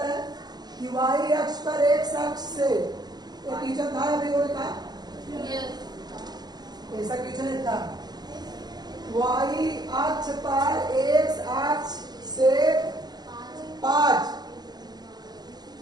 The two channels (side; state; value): left; late; 0.20 ms